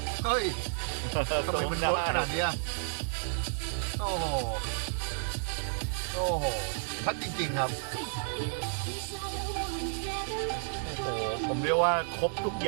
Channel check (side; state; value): left; silent; digital silence